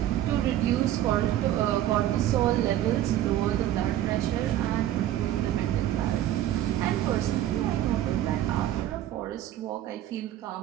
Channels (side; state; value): left; quieter; 12.7 dB